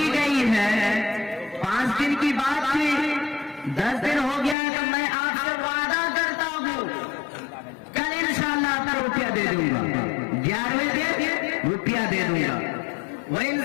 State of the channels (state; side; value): drops out; right; at 4.5 s